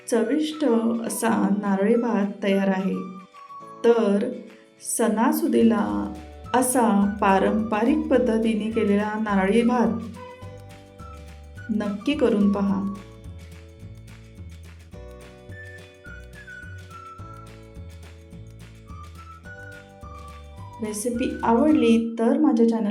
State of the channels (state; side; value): identical; both; correlation 1.00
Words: चविष्ट असा नारळी भात तयार आहे. तर सणासुदीला असा पारंपरिक पद्धतीने केलेला नारळी भात नक्की करून पहा. रेसिपी आवडली तर माझ्या